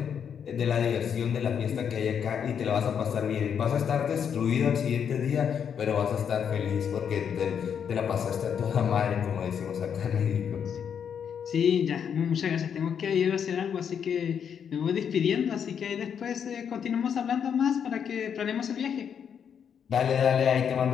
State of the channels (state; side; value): quieter; right; 7.8 dB